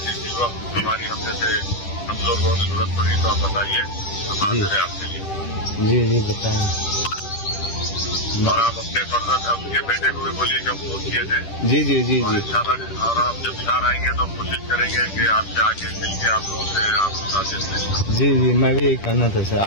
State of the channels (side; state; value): right; late; 10 ms